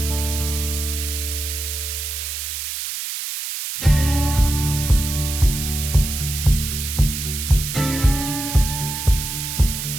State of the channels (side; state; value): right; noise; hiss, 5 dB below the sound